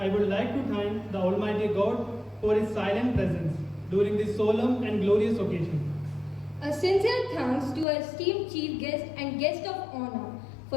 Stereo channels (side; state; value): right; drops out; at 7.9 s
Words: would like to thank the Almighty God for His silent presence during this solemn and glorious occasion. A sincere thanks to our esteemed chief guest and guest of honor